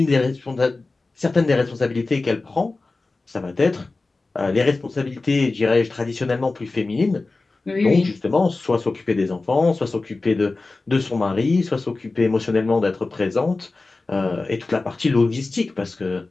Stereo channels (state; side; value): quieter; right; 3.5 dB